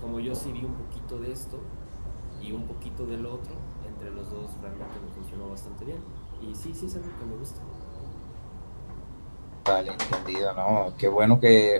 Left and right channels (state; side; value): inverted; both; correlation -1.00